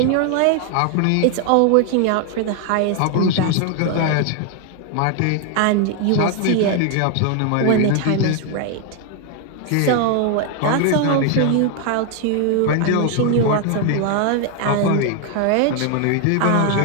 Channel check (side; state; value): both; different; correlation 0.00